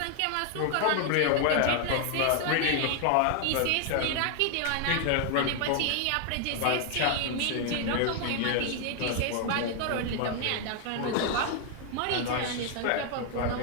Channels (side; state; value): both; different; correlation 0.00